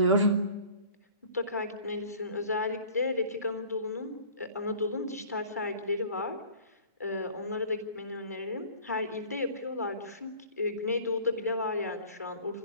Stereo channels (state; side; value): inverted; both; correlation -0.47